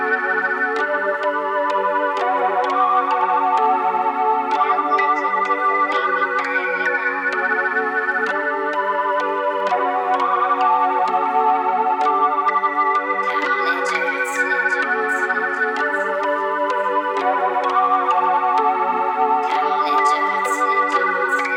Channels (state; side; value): identical; both; correlation 1.00